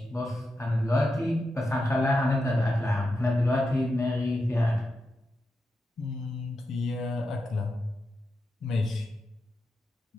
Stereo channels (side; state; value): both; normal; correlation 0.88